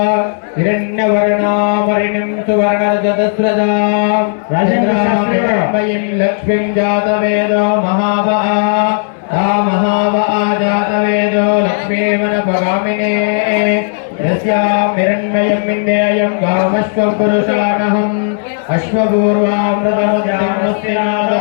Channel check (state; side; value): silent; right; digital silence